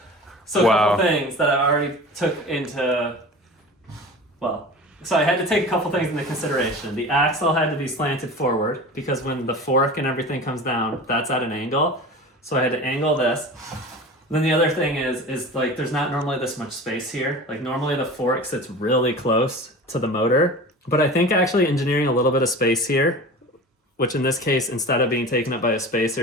So a Wow. couple things that I already took into... So I had to take a couple things into consideration. The axle had to be slanted forward because when the fork and everything comes down, that's at an angle. So I had to angle this. Then the other thing is like there's not normally this much space here. Like normally the fork sits really close to the motor, but I think actually engineering a little bit of space here, which in this case, instead of being taken up by a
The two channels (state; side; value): normal; both; correlation 0.35